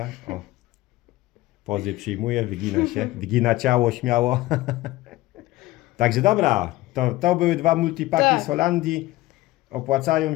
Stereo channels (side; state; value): right; quieter; 17.9 dB